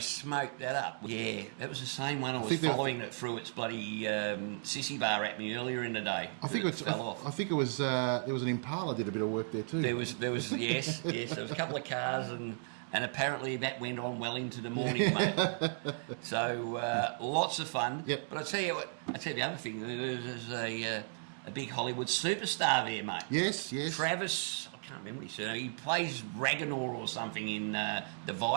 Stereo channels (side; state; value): left; silent; digital silence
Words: that up. Yeah, that was the same one I was following that threw its bloody sissy bar at me earlier in the day. I think it fell off. I think it was there was an Impala did a bit of work there too. There was yes. There was a couple of cars and apparently that went on well into the morning, mate. So lots of fun. Yep. But I tell you the other thing. There's a big Hollywood superstar there, mate. Yes. Travis. I can't remember his surname. He plays Ragnar or something in the